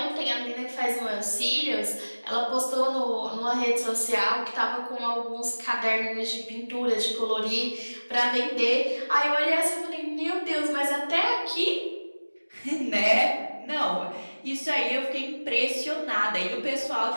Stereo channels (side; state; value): both; inverted; correlation -1.00